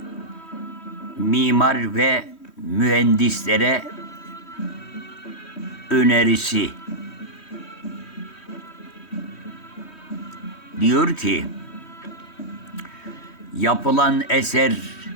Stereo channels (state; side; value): late; right; 3.1 ms